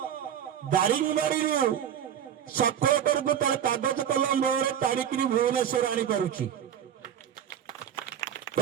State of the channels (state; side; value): quieter; left; 9.3 dB